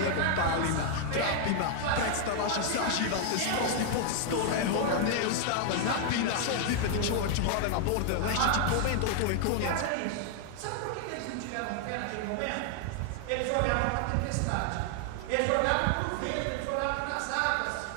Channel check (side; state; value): both; different; correlation 0.00